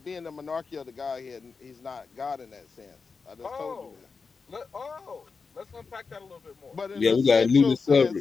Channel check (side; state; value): right; quieter; 4.9 dB